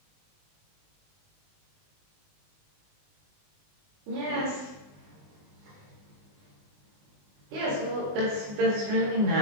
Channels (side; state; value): left; late; 20 ms